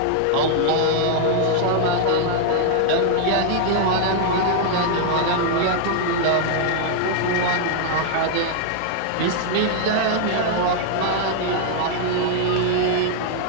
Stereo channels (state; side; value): different; both; correlation 0.00